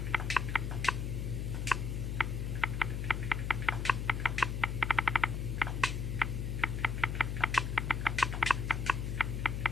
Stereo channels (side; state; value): left; noise; hum, 2 dB below the sound